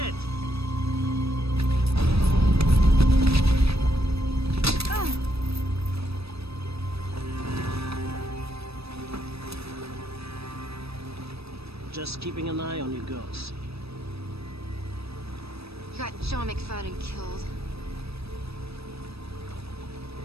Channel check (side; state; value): left; late; 0.78 ms